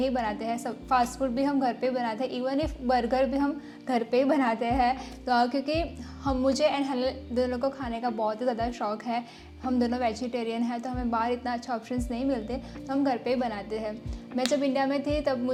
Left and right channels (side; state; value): both; identical; correlation 1.00